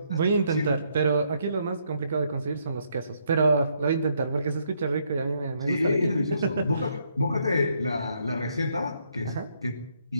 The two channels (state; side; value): inverted; both; correlation -0.73